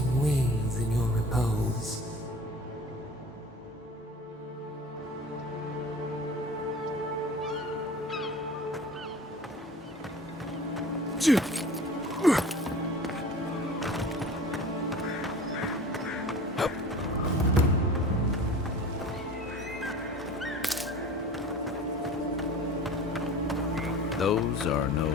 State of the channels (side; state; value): both; normal; correlation 0.41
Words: wings in your repose. Those are no